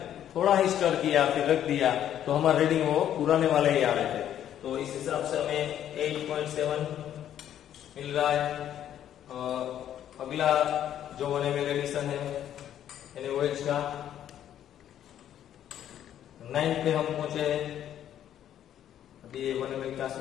थोड़ा ही स्टर किया फिर रख दिया तो हमारा रीडिंग वो पुराने वाले ही आ रहे थे। तो इस हिसाब से हमें 8.7 मिल रहा है। अगला जो 1 ml एडिशन है NaOH का 9 पे हम पहुंचे हैं। अभी 1 ml का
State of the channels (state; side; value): quieter; right; 10.7 dB